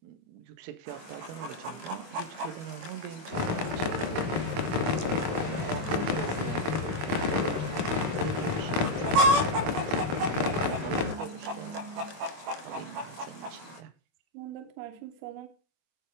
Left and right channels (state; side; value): late; left; 24 ms